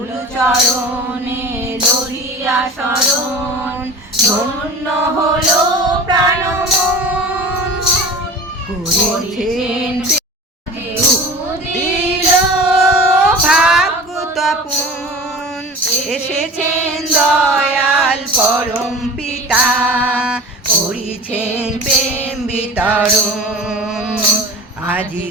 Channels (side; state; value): both; normal; correlation 0.36